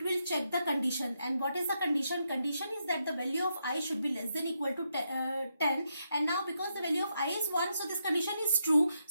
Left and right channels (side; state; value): both; inverted; correlation -0.81